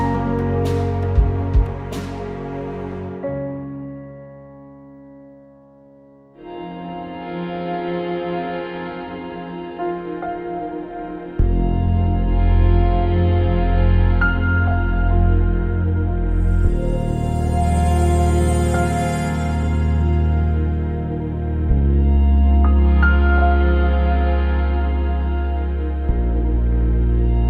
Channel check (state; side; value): identical; both; correlation 1.00